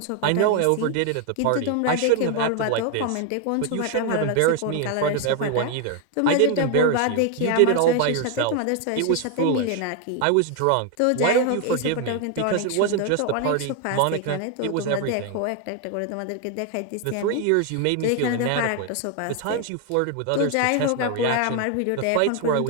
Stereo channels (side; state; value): both; different; correlation 0.01